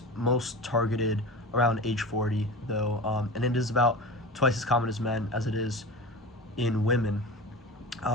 most targeted around age 40, though, and it is about twice as common as men as it is in women.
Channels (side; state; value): both; normal; correlation 0.30